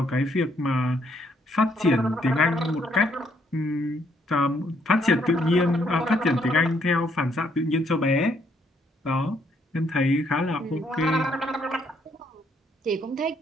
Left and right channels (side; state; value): both; normal; correlation 0.70